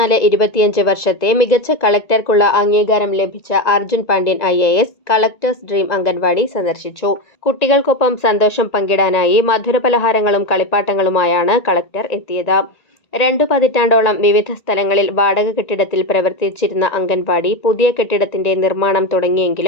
വർഷത്തെ മികച്ച കളക്ടർക്കുള്ള അംഗീകാരം ലഭിച്ച Arjun Pandian IAS collectors dream anganwadi സന്ദർശിച്ചു. കുട്ടികൾക്കൊപ്പം സന്തോഷം പങ്കിടാനായി മധുരപലഹാരങ്ങളും കളിപ്പാട്ടങ്ങളുമായാണ് കളക്ടർ എത്തിയത്. 2 പതിറ്റാണ്ടോളം വിവിധ സ്ഥലങ്ങളിൽ വാടക കെട്ടിടത്തിൽ പ്രവർത്തിച്ചിരുന്ന അംഗൻവാടി പുതിയ കെട്ടിടത്തിന്റെ നിർമ്മാണം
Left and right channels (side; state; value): right; late; 1.9 ms